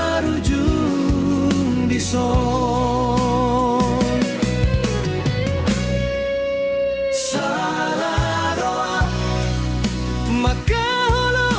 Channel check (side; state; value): both; identical; correlation 1.00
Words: di son. Salah doa